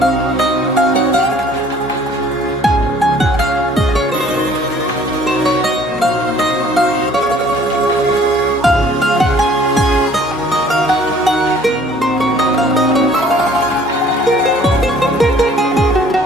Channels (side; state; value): both; normal; correlation 0.55